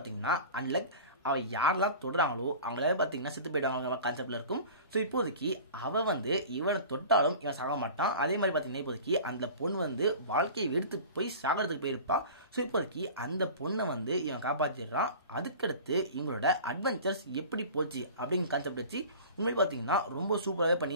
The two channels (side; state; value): both; inverted; correlation -0.39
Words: அன்லக். அவள் யாரெல்லாம் தொடுறாங்களோ அவங்களால பார்த்தீங்கன்னா செத்து போயிடுவாங்க கான்செப்டில் இருக்கும். ஸோ இப்போதைக்கு அவள் வந்து இவனை தொட்டாலும் இவன் சாக மாட்டான். அதே மாதிரி பார்த்தீங்கன்னா இப்போதைக்கு அந்த பொண்ணு வந்து வாழ்க்கையை எடுத்து போய் சாகிறதுக்கு போயிருப்பா. ஸோ இப்போதைக்கு அந்த பொண்ணை வந்து இவன் காப்பாற்றிடுறான். அதுக்கடுத்து இவங்களோட அட்வென்ச்சர்ஸ் எப்படி போச்சு அப்படிங்கிற கான்செப்ட் வச்சு உண்மையை பார்த்தீங்கன்னா ரொம்ப சூப்பராகவே